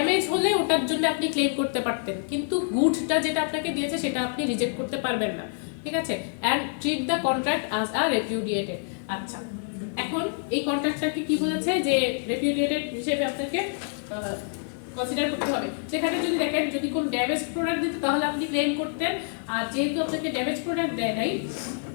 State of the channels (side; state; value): right; silent; 60 dB below the other